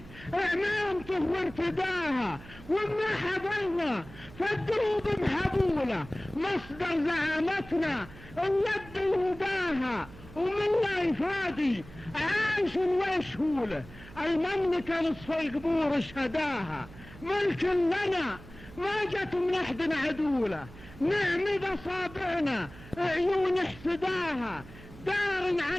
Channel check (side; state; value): right; noise; hum, 18 dB below the sound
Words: اعمامته وارتداها، وما حضرنا فالدروب محبوله، مصدر زعامتنا اليد يهداها، ومن لا يفادي عايش ويشهوله، المملكة نصف القبور شهداها، ملك لنا ما جت من احد عدوله، نعمد اصابعنا عيون احسداها، دار